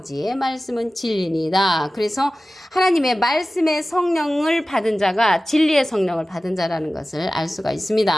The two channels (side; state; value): both; normal; correlation 0.96